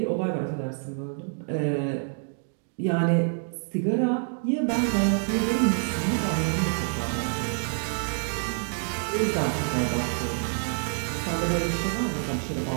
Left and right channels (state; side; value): silent; left; 60 dB below the other